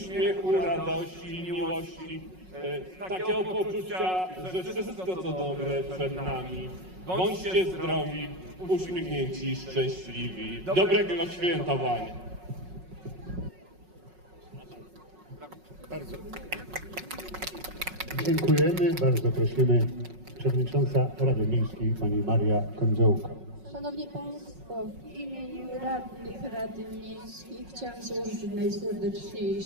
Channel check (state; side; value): late; left; 5.4 ms